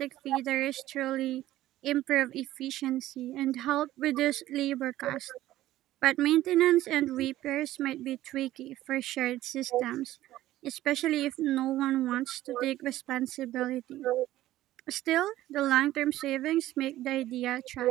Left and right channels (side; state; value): left; quieter; 14.8 dB